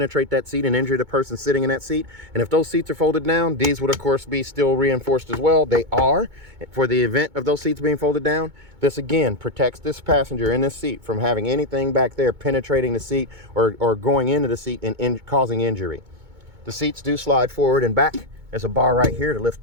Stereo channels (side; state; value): left; late; 2.2 ms